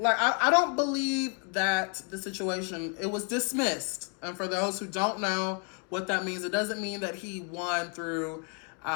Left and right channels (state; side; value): quieter; right; 38.9 dB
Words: I don't believe that the situation, it was dismissed. And for those who don't know what that means, it doesn't mean that he won through